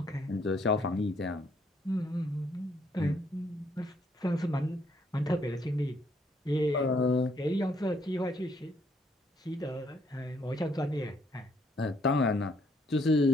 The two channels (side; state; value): both; normal; correlation 0.69